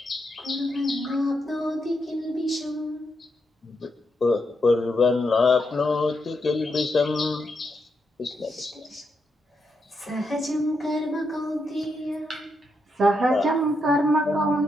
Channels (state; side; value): normal; both; correlation 0.82